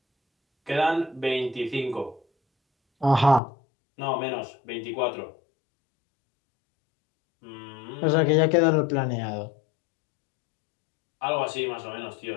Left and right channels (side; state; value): right; drops out; at 3.4 s